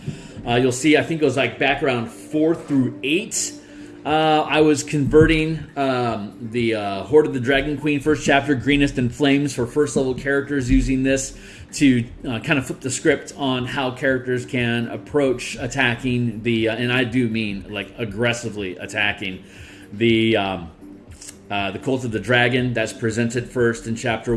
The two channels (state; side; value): identical; both; correlation 1.00